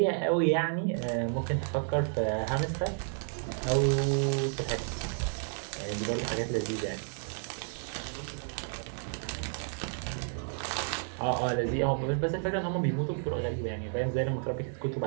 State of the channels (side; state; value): left; silent; 57 dB below the other